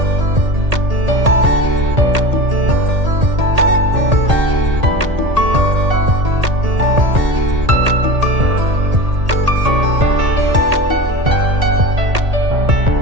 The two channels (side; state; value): left; late; 1.8 ms